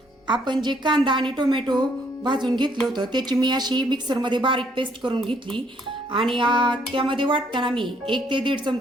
आपण जे कांदा आणि टोमॅटो भाजून घेतलं होतं त्याची मी अशी मिक्सरमध्ये बारीक पेस्ट करून घेतली. आणि त्यामध्ये वाटताना मी 1 ते 1.5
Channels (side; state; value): both; normal; correlation 0.67